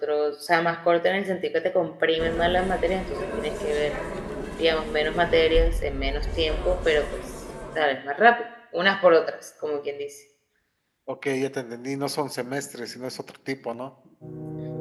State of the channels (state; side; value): identical; both; correlation 1.00